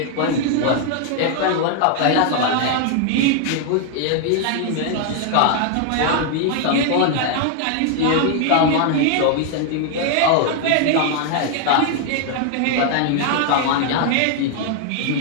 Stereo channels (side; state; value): both; different; correlation 0.00